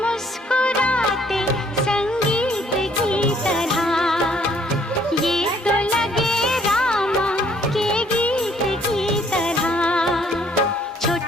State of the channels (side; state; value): both; normal; correlation 0.63